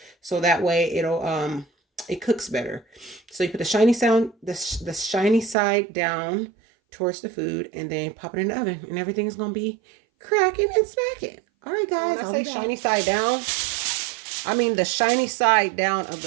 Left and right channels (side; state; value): left; drops out; at 5.6 s